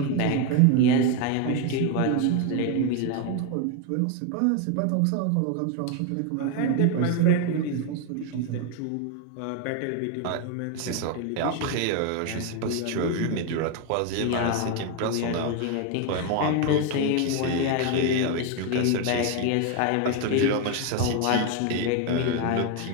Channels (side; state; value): both; different; correlation 0.01